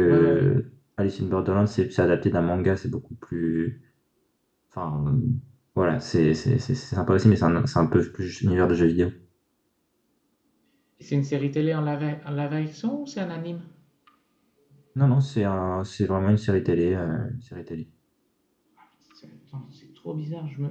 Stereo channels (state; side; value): identical; both; correlation 1.00